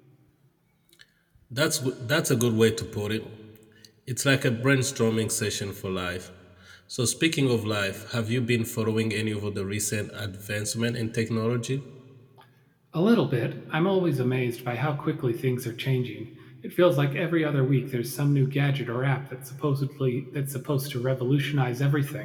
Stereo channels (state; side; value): identical; both; correlation 1.00